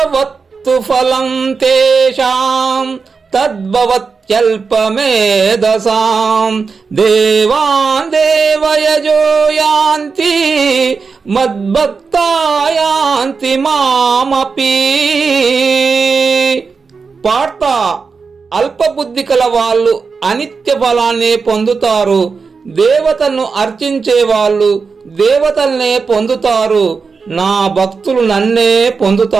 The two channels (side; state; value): left; quieter; 5.0 dB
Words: ఫలం తేషాం తద్భవత్యల్పమేధసాం దేవాన్ దేవయజో యాంతి మద్భక్తా యాంతి మామపి. పార్థ, అల్పబుద్ధి కల వాళ్ళు అనిత్య ఫలాన్ని పొందుతారు. దేవతలను అర్చించే వాళ్ళు దేవతల్నే పొందుతారు. నా భక్తులు నన్నే